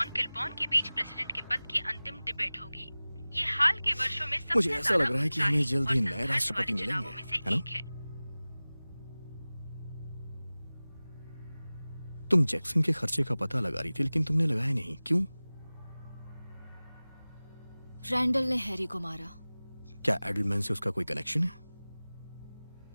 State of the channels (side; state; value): both; inverted; correlation -0.99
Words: किलबॉर्न के बीच प्रेसिडेंट के पद की अंतिम डिबेट होगी। ये हाल के वर्षों में सबसे मुझे ऐसा लग रहा है कि हमें जल्द ही नए राष्ट्रपति मिलेंगे, है ना? तुम जैक्सन के खर्चे का पता लगा रही थी, लेकिन तुमने लगाया नहीं, क्यों? रैंडल ने हैरी को मारा। क्या एडलमैन से उसका कोई कनेक्शन है?